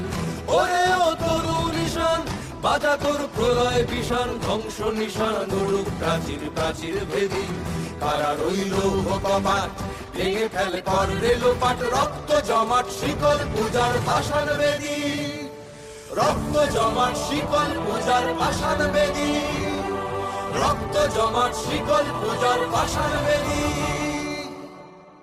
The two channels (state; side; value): identical; both; correlation 1.00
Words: ওরে ও তরু নিশান বাজা তোর প্রলয় বিষাণ ধ্বংস নিশান উড়ুক প্রাচীর প্রাচীর ভেদি কারা রইল কপাট ভেঙে ফেল কর রেলোপাট রক্ত জমাট শিকল পূজার পাষাণ বেদী রক্ত জমাট শিকল পূজার পাষাণ বেদী রক্ত জমাট শিকল পূজার পাষাণ বেদী